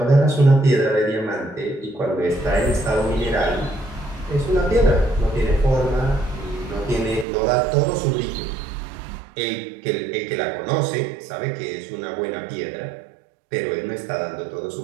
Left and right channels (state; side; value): drops out; left; at 7.2 s